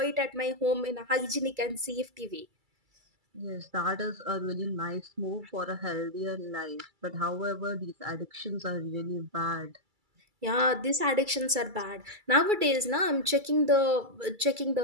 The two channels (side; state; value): left; late; 2.3 ms